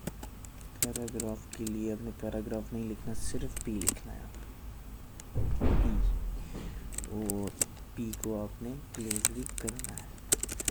के लिए अपने पैराग्राफ नहीं लिखना, सिर्फ P लिखना है। P, और P को आपने क्लोज भी करना है।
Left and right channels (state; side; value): identical; both; correlation 1.00